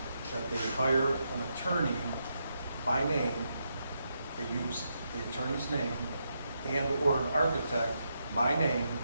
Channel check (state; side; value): inverted; both; correlation -0.82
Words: that they hire an attorney by name, they use the attorney's name, and/or an architect by name?